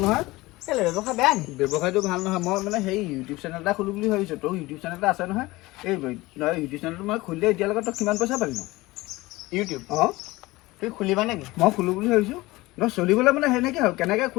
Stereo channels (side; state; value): right; quieter; 20.3 dB